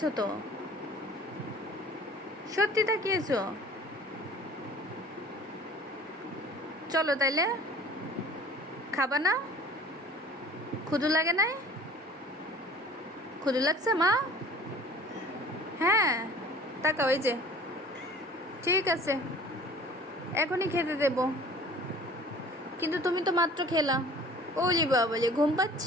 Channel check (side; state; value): both; normal; correlation 0.47